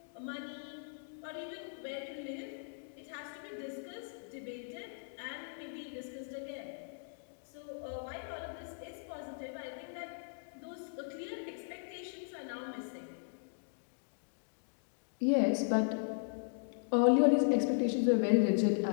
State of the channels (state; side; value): silent; right; digital silence